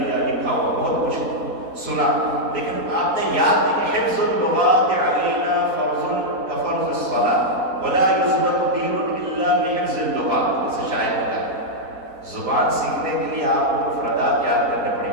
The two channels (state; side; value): late; left; 4.2 ms